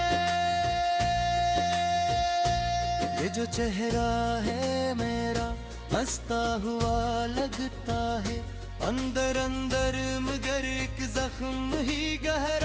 ये जो चेहरा है मेरा हंसता हुआ लगता है, अंदर अंदर मगर एक जख्म ही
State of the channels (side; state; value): both; identical; correlation 1.00